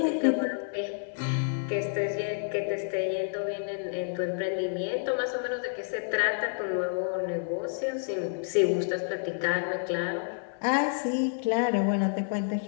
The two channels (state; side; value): silent; right; 58 dB below the other